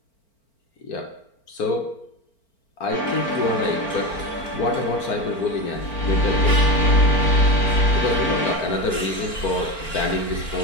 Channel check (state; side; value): late; right; 4.4 ms